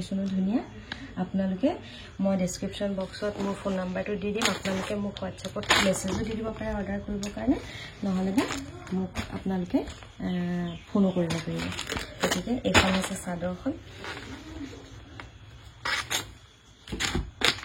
ধুনীয়া। আপোনালোকে মই ডেছক্ৰিপশ্যন বক্সত মোৰ ফোন নাম্বাৰটো দি দিম, আপোনালোকে মোক হোৱাটছএপত মেছেজো দি দিব পাৰে অৰ্ডাৰ কৰিবৰ কাৰণে, নহ'লে বা মোক আপোনালোকে ফোনো কৰিব পাৰিব। গতিকে এইখন হৈছে চাদৰখন,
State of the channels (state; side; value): identical; both; correlation 1.00